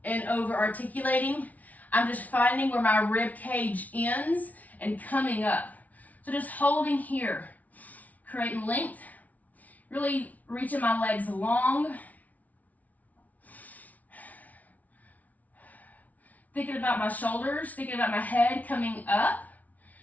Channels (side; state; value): right; late; 0.073 ms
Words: and over articulating. I'm just finding where my rib cage ends and coming up. So just holding here, creating length, really reaching my legs long. Thinking about my shoulders, thinking about my head coming up,